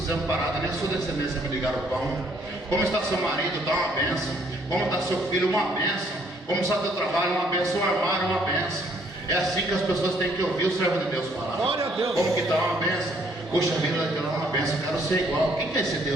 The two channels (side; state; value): both; normal; correlation 0.65